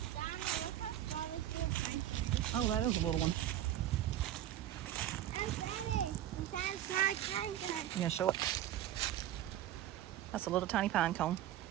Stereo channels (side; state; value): left; quieter; 12.3 dB